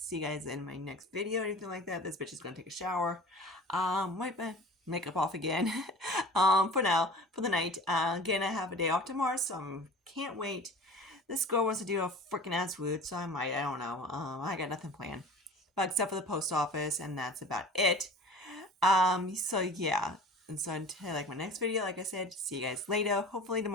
you guys in my next video, anything like that. This bitch is gonna take a shower. Wipe my makeup off again. For now, for the night. Again, I have a day off tomorrow, so I can't wait. This girl wants to do a freaking ass route, so I might. I don't know. I got nothing planned, but except for the post office, and that's about it. So yeah. And so until like my next video, like I said, see you guys later. Hopefully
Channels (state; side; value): normal; both; correlation 0.41